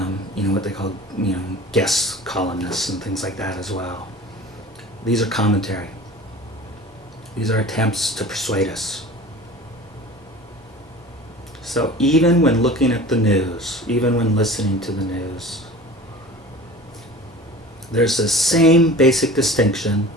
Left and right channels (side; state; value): both; normal; correlation 0.39